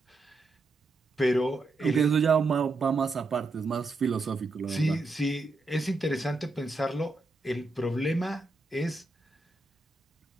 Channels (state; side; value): quieter; left; 3.2 dB